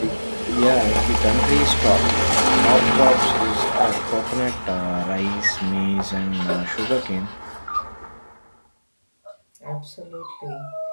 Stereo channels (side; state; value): both; inverted; correlation -1.00